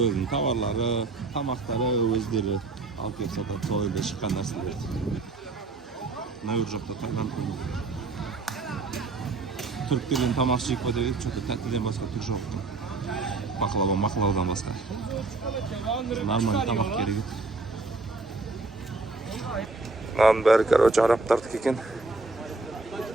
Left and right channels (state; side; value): quieter; left; 3.6 dB